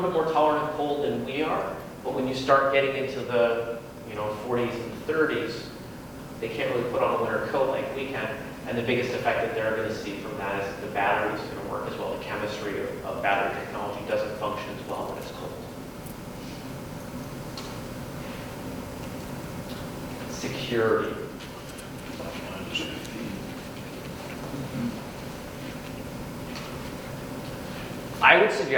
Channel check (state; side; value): identical; both; correlation 1.00